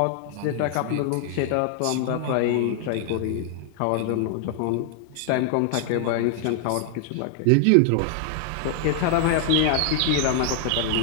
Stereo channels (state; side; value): different; both; correlation 0.00